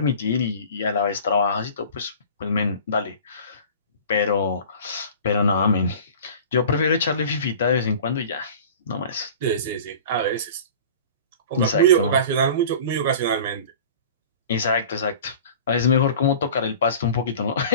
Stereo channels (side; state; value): both; inverted; correlation -0.40